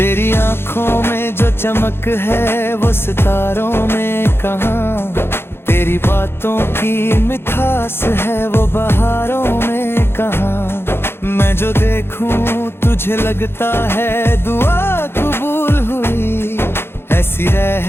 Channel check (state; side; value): late; right; 0.11 ms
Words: आंखों में जो चमक है वो सितारों में कहाँ, तेरी बातों की मिठास है वो बहारों में कहाँ। मैं जो देखूं तुझे लगता है दुआ कबूल हुई, ऐसी